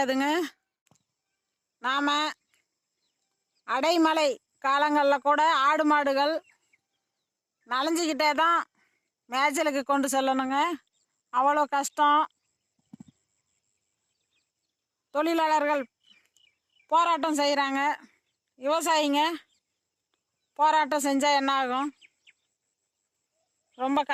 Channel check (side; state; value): both; identical; correlation 1.00